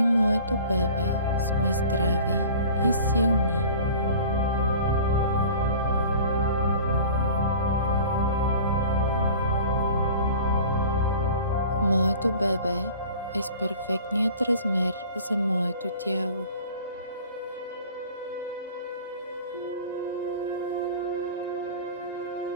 моето бебе сме здрави и силни. Моето бебе е с перфектният размер за моето тяло.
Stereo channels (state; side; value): inverted; both; correlation -0.43